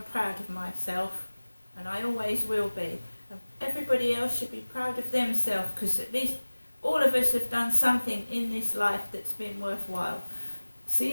proud of myself, and I always will be. And everybody else should be proud of themselves, because at least all of us have done something in this life that's been worthwhile.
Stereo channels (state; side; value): inverted; both; correlation -1.00